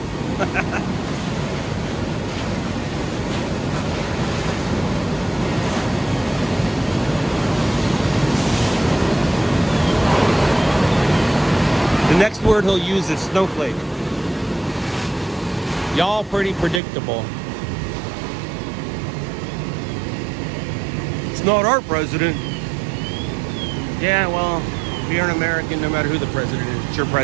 The next word he'll use is snowflake. Y'all pretty predictable. It's not our president. Yeah, well, if you're an American, no matter who the president is, it's your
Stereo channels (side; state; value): left; drops out; at 16.8 s